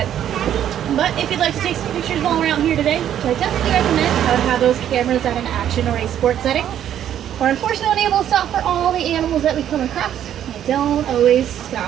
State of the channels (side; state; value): left; quieter; 10.5 dB